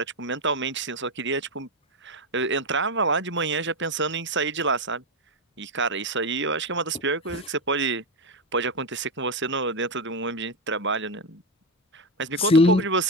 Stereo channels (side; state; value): both; normal; correlation 0.09